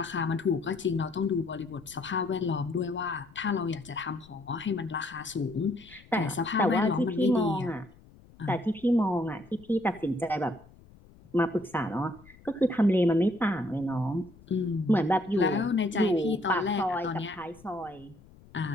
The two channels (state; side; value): noise; left; rumble, 24 dB below the sound